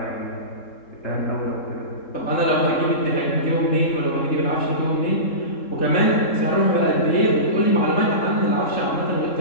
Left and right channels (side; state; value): right; late; 3.7 ms